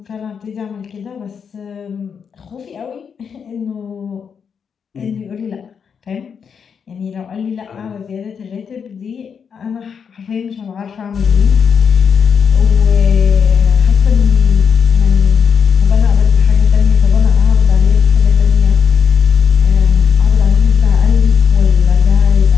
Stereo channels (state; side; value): quieter; right; 6.7 dB